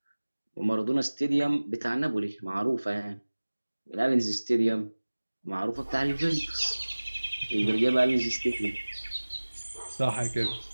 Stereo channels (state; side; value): inverted; both; correlation -1.00